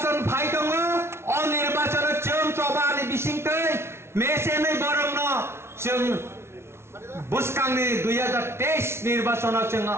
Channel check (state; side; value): late; left; 0.12 ms